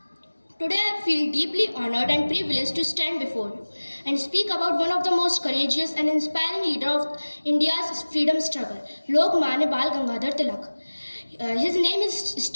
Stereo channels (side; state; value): both; inverted; correlation -1.00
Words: Today I feel deeply honored and privileged to stand before you and speak about one of the most courageous and inspiring leader of India's freedom struggle, Lokmanya Bal Gangadhar Tilak. His name is